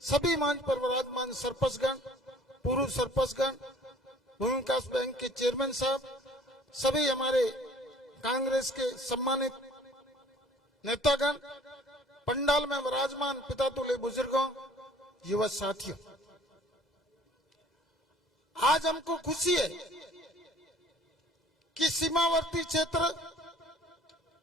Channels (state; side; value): normal; both; correlation 0.52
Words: सभी मंच पर विराजमान सरपंचगण, पूर्व सरपंचगण, भूमि विकास बैंक के चेयरमैन साहब, सभी हमारे कांग्रेस के सम्मानित नेतागण, पंडाल में विराजमान पितातुल्य बुजुर्गों, युवा साथियों, आज हमको खुशी है कि सीमावर्ती क्षेत्र